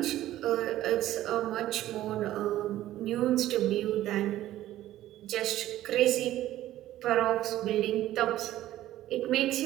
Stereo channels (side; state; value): left; quieter; 14.0 dB